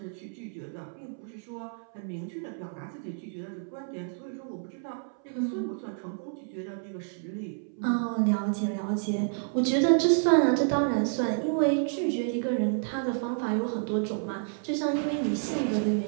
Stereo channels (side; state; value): left; silent; 58 dB below the other